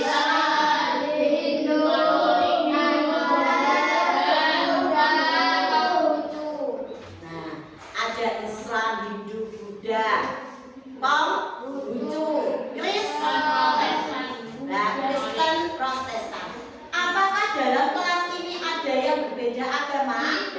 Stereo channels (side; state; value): both; identical; correlation 1.00